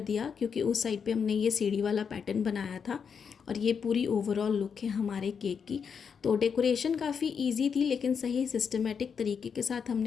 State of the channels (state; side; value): quieter; right; 6.6 dB